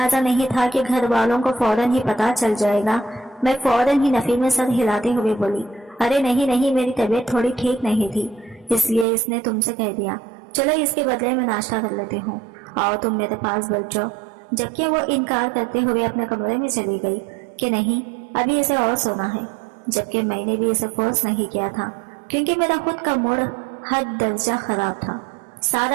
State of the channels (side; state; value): left; drops out; at 9.1 s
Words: नहीं था कि घर वालों को फौरन ही पता चल जाएगा। मैं फौरन ही नफी में सर हिलाते हुए बोली, अरे नहीं नहीं, मेरी तबीयत थोड़ी ठीक नहीं थी, इसलिए इसने तुमसे कह दिया। चलो इसके बदले में नाश्ता कर लेती हूँ, आओ तुम मेरे पास बैठ जाओ। जबकि वो इनकार करते हुए अपने कमरे में चली गई कि नहीं, अभी इसे और सोना है। जबकि मैंने भी इसे फोर्स नहीं किया था, क्योंकि मेरा खुद का मूड हद दर्जा खराब था।